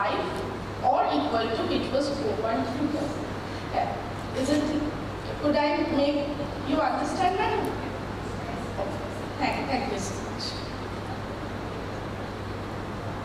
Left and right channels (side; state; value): both; identical; correlation 1.00